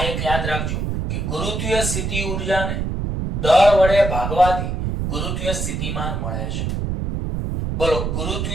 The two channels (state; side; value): noise; right; rumble, 2 dB below the sound